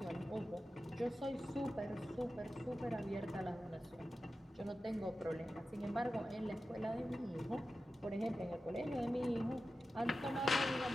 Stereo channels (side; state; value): both; normal; correlation 0.93